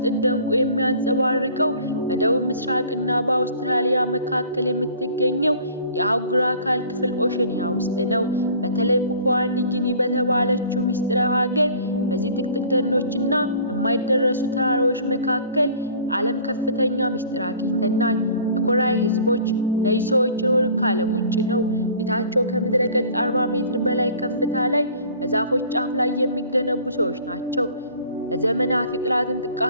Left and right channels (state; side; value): inverted; both; correlation -0.49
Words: እንደ ዕንቁ የሚያንጸባርቀው በደቡብ ምስራቅና በአውስትራሊያ መካከል የምትገኘው የአህጉር አካል ክፍል ኦሸኒያ ውስጥ ነው። በተለይ ፓፑዋ ኒው ጊኒ በተባለችው ምስጢራዊ ሀገር በዚህ ጥቅጥቅ ደኖችና በማይደረሱ ተራራዎች መካከል ዓለም ከፍተኛ ምስጢር አግኝተናል። የኮራይ ህዝቦች እነዚህ ሰዎች የኖሩት ከዓለም ውጭ ነው። ቤታቸው ከምድረ ገጽ 40 ሜትር በላይ ከፍታ ላይ በዛፎች ጫፍ ላይ የሚገነቡ ሰዎች ናቸው። ለዘመናት የጠላትን